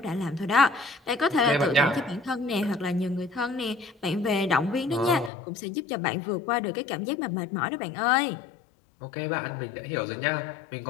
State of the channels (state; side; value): drops out; right; at 5.3 s